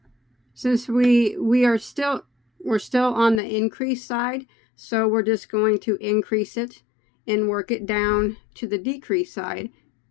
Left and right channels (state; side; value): drops out; right; at 3.4 s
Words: since we're still on the increase side, so we're just going to increase it and work it down to the decrease side